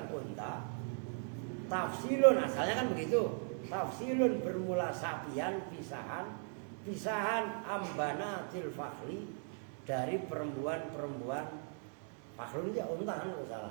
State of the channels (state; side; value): silent; left; 52 dB below the other